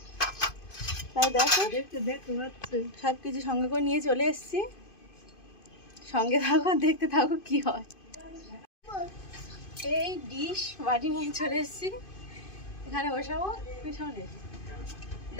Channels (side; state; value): right; late; 2.5 ms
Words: তাই দেখো সব কিছু সঙ্গে করে নিয়ে চলে এসেছি। সঙ্গে থাকো, দেখতে থাকো কি হয়। এই ডিশ বাটি নিয়ে চলে এসেছি, এখানে বসাবো পিছনে।